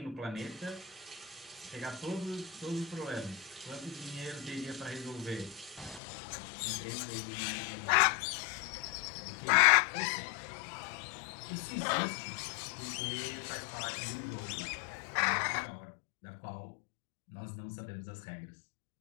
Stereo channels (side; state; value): right; drops out; at 6.0 s